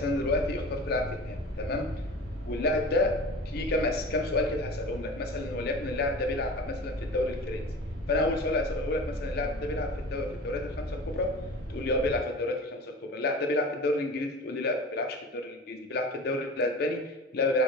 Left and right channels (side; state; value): both; normal; correlation 0.37